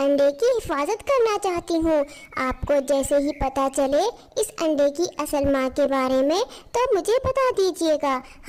की हिफाजत करना चाहती हूँ। आपको जैसे ही पता चले इस अंडे की असल माँ के बारे में तो मुझे बता दीजिएगा।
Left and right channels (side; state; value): both; identical; correlation 1.00